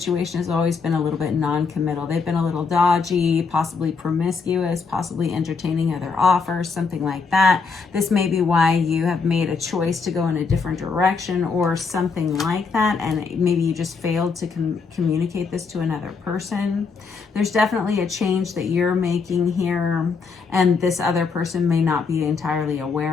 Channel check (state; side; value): quieter; right; 5.0 dB